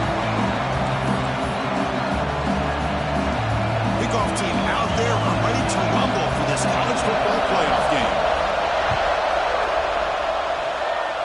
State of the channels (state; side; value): identical; both; correlation 1.00